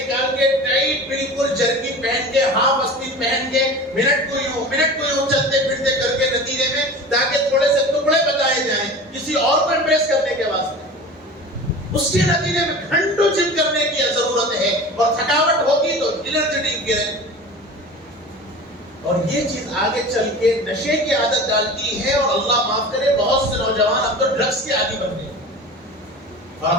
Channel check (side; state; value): both; normal; correlation 0.36